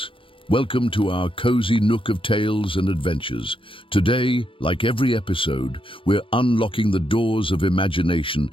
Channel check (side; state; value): right; late; 0.25 ms